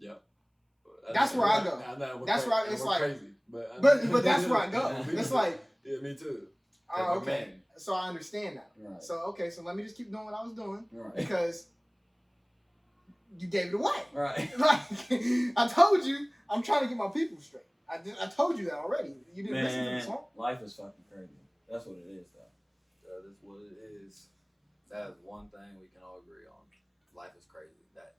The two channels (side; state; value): both; identical; correlation 1.00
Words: That's where I go. That's where it's like- crazy. But that's where I go. It's like, yeah, me too. oh, we're okay. men. So I understand that. Right. So okay, so let me just keep doing what I was doing Right. because you gave it away. Right. Like I told you, I'm trying to get my people straight. I told you that already. You didn't listen to the Man, song. life is fucking crazy. That's what it is, though. That is what it is. That is one thing we can all agree on. Life is crazy. That